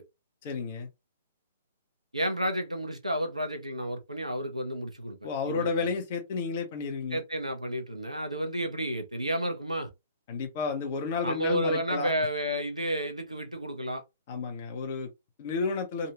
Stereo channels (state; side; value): inverted; both; correlation -0.58